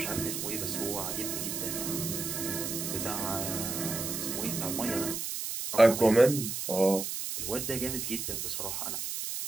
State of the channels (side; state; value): right; noise; hiss, 4 dB below the sound